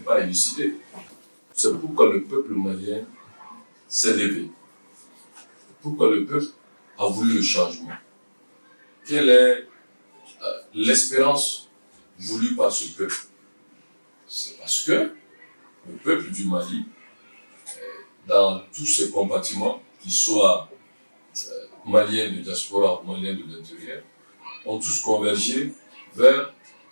élucidé. C'est pourquoi le peuple malien s'est levé. Pourquoi le peuple a voulu le changement. Quelle est l'espérance voulue par ce peuple? C'est parce que le peuple du Mali, dans tous ses compartiments, qu'ils soient maliens de diaspora ou maliens de l'intérieur, ont tous convergé vers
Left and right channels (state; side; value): inverted; both; correlation -1.00